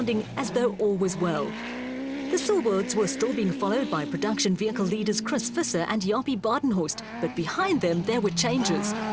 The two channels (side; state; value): both; identical; correlation 1.00